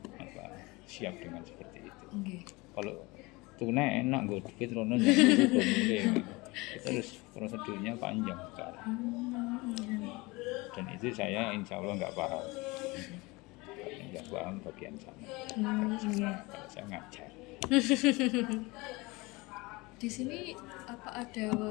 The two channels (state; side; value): quieter; right; 23.8 dB